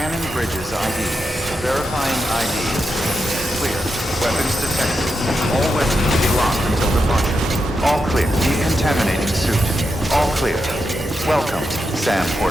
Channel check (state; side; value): normal; both; correlation 0.86